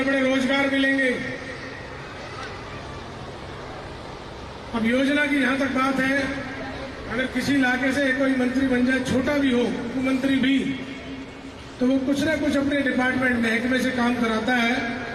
बड़े रोजगार मिलेंगे। अब योजना की जहां तक बात है, अगर किसी इलाके से कोई मंत्री बन जाए, छोटा भी हो, उपमंत्री भी, तो वो कुछ ना कुछ अपने डिपार्टमेंट महकमे से काम कराता है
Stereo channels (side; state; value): both; identical; correlation 1.00